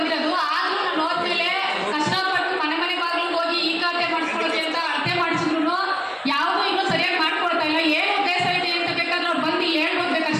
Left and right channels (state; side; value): identical; both; correlation 1.00